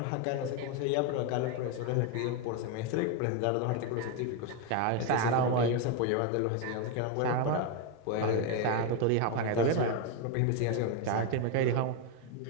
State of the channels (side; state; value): both; different; correlation 0.02